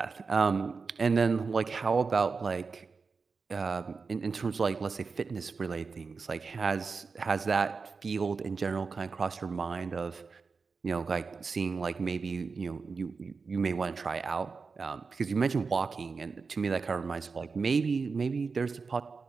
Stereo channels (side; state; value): left; quieter; 4.7 dB